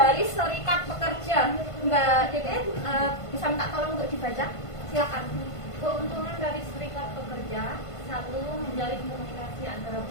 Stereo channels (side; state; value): right; late; 1.5 ms